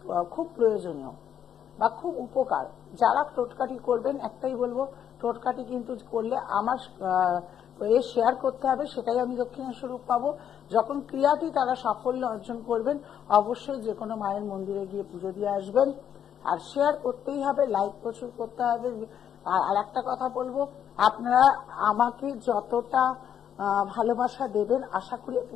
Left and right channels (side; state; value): right; quieter; 9.2 dB